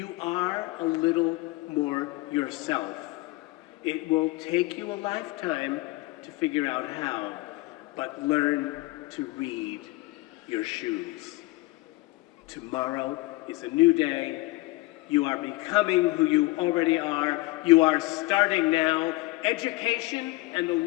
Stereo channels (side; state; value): right; quieter; 21.4 dB